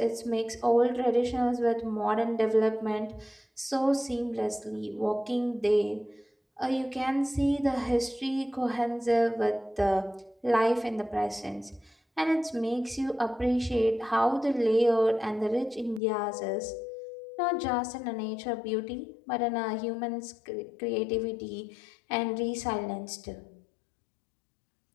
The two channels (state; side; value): drops out; right; at 16.0 s